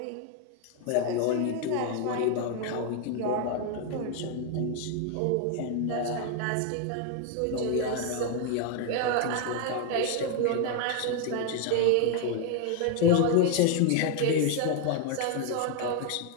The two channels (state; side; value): different; both; correlation 0.01